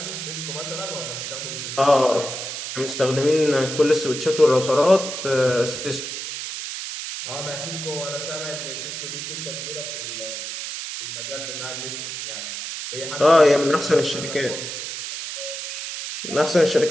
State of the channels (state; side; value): noise; right; hiss, 6 dB below the sound